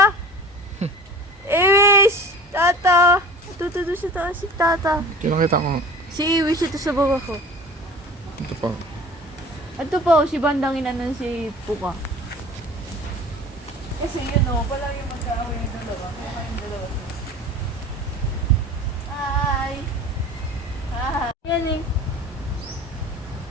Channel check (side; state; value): both; normal; correlation 0.41